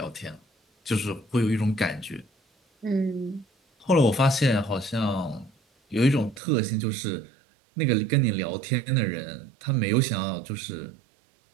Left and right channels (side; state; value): left; drops out; at 6.4 s